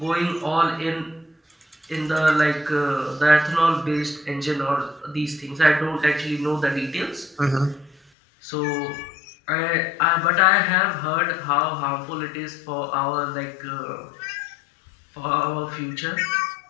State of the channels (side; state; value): right; drops out; at 8.0 s